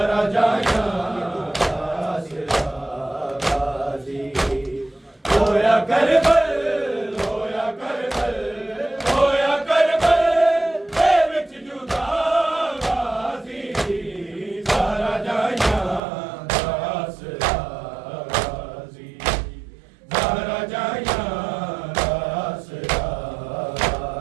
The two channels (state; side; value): drops out; left; at 16.0 s